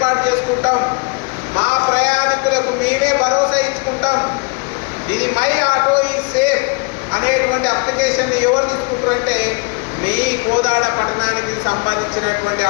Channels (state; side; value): quieter; right; 32.8 dB